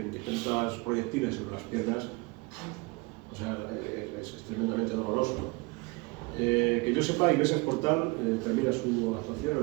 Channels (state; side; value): quieter; left; 26.2 dB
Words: y tantos proyectiles sobre las piernas, o sea, es tremendamente doloroso, ¿no? Que yo sepa, Iglesias Portal termina su actuación en el